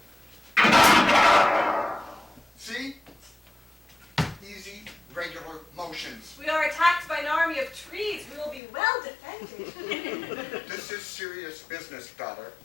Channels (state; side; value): drops out; right; at 8.6 s